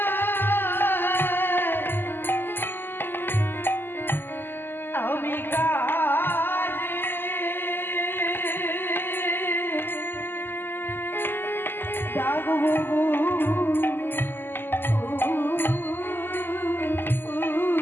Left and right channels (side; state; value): right; late; 0.099 ms